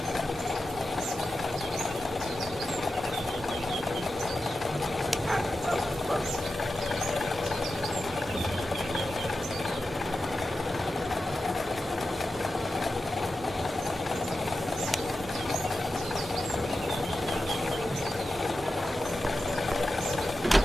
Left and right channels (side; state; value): both; normal; correlation 0.91